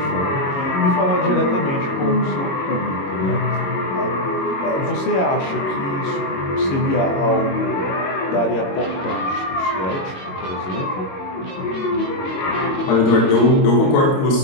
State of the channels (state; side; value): late; right; 22 ms